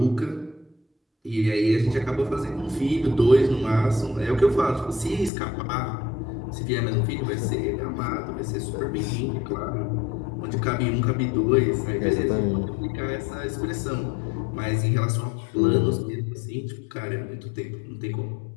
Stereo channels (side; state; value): right; drops out; at 5.3 s